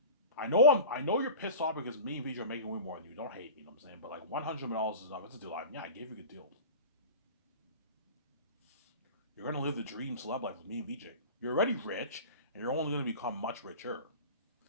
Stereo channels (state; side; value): inverted; both; correlation -0.33